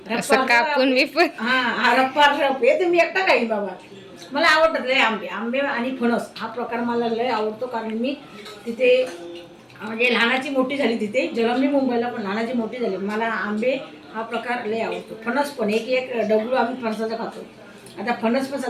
असं कापून मी पण हा रप्पार रप हे तुम्ही एकटा काही बाबा. मला आवडतात लय आंबे. आंबे आणि फणस हा प्रकार मला लय आवडतो, कारण मी तिथे म्हणजे लहानाची मोठी झाली तिथे, जन्मली मुंबईला पण लहानाची मोठी झाली. मला आंबे हा प्रकार लय आवडतो. फणस पण एक एक डबलू आम्ही फणसाचा खातो. आता फणस पण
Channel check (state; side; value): identical; both; correlation 1.00